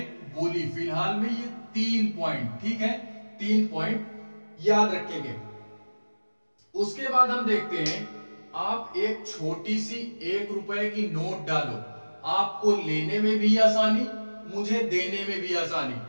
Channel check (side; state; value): both; inverted; correlation -1.00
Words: बोली। फिलहाल में ये 3 पॉइंट, ठीक है, 3 पॉइंट याद रखेंगे। उसके बाद हम देखते हैं, आप एक छोटी सी 1 रुपए की नोट डालो, आपको लेने में भी आसानी, मुझे देने में भी आसानी।